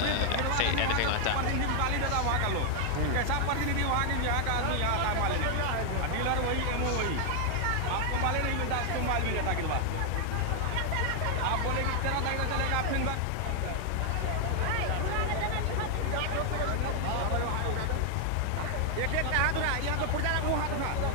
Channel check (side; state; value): both; different; correlation 0.00